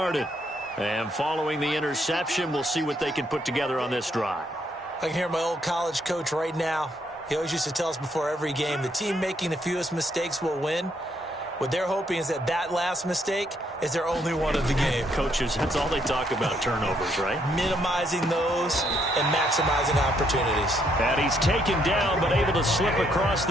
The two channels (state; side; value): normal; both; correlation 0.72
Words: And following the interception, we'll see what they can put together on this drive. I can hear my old college coach right now. He always used to tell us before every game, the team making the fewest mistakes will win. What they're hoping is that that last mistake is their only one of the game. Coaches, that's all they talk about, turnovers, right? Minimizing those and maximizing opportunities. And he's taken down but able to slip across